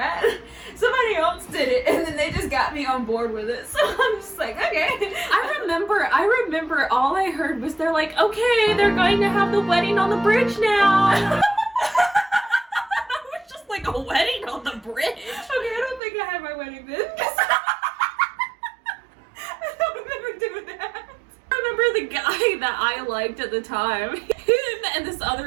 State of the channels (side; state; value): left; drops out; at 16.0 s